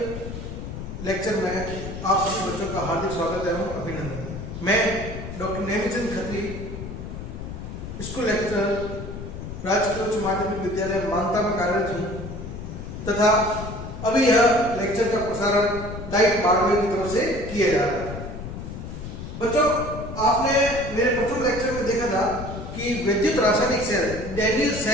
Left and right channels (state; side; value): noise; left; rumble, 9 dB below the sound